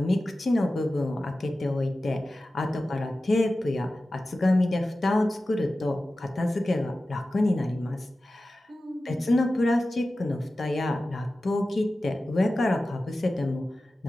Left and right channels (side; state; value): both; normal; correlation 0.95